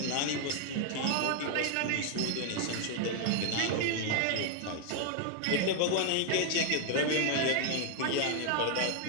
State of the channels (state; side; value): different; both; correlation 0.00